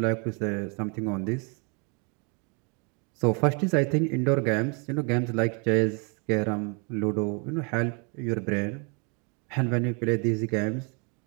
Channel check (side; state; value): left; quieter; 34.8 dB